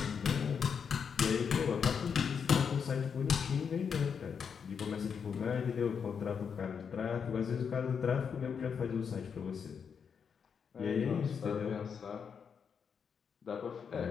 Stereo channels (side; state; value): right; quieter; 6.7 dB